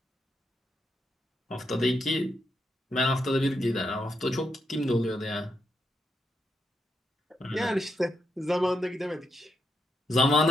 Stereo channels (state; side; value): normal; both; correlation 0.82